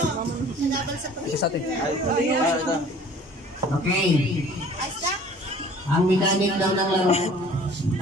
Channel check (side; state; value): both; normal; correlation 0.50